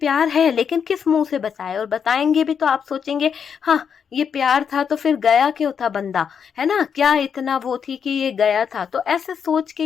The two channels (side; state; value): right; quieter; 7.1 dB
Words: है, लेकिन किस मुंह से बताए, और बताएंगे भी तो आप सोचेंगे हाँ ये प्यार था तो फिर गया क्यों था बंदा, है ना, क्या इतना वो थी कि ये गया था। तो ऐसे सोच के